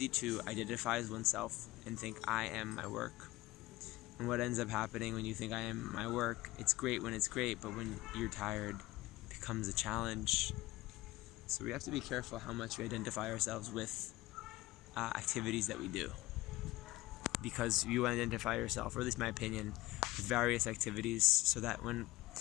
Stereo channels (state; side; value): quieter; right; 18.8 dB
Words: to identify as oneself and think I am my work. And what ends up happening when you think I am my work, it's great when it's great, but when you're tired, it becomes a challenge. So we have to be careful how much we identify ourselves with activities that we do. Because you identify yourself, or at least my opinion, with various activities, so that when